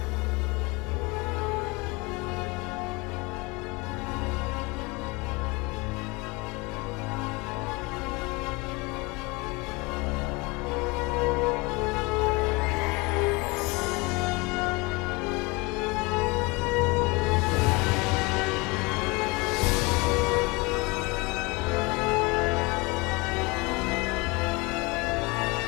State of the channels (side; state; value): right; quieter; 26.0 dB